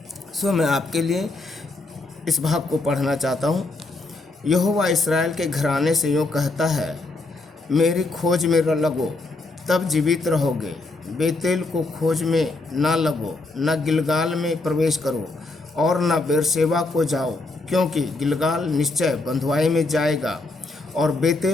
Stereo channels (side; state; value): right; quieter; 3.2 dB